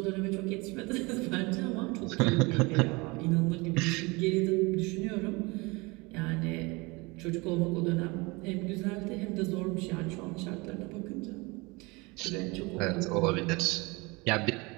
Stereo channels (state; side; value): quieter; left; 25.7 dB